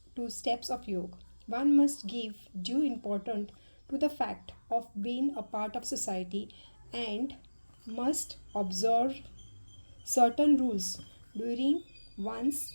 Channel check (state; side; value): inverted; both; correlation -1.00